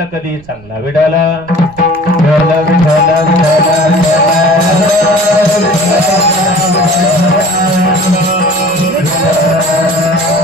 कधीही चांगला. विडाला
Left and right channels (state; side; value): noise; right; rumble, 24 dB below the sound